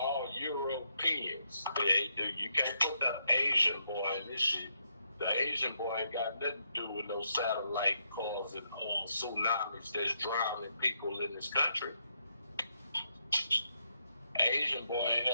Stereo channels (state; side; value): inverted; both; correlation -0.78